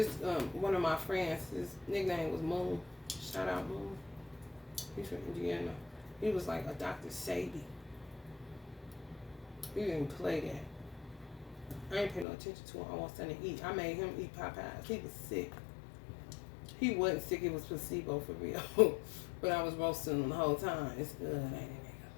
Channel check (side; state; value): right; drops out; at 12.2 s